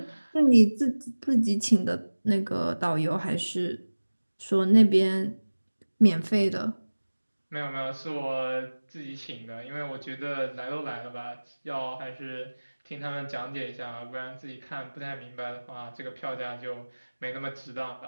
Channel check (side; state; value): both; inverted; correlation -1.00